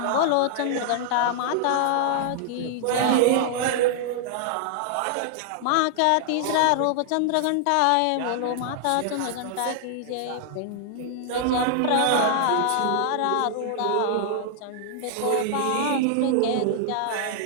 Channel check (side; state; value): both; different; correlation -0.01